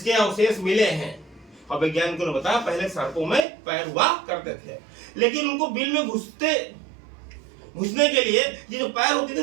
अवशेष मिले हैं और वैज्ञानिकों ने बताया पहले सर्पों में पैर हुआ करते थे, लेकिन उनको बिल में घुसने के लिए ये जो पैर होती थी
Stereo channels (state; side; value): drops out; left; at 3.4 s